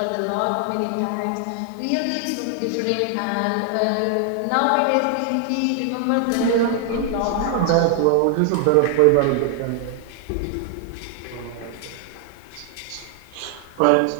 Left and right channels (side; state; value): both; different; correlation 0.00